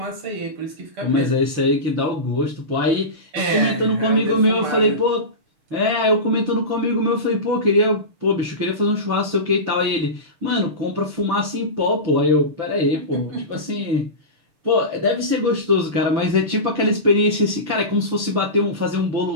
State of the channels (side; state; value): left; late; 6.7 ms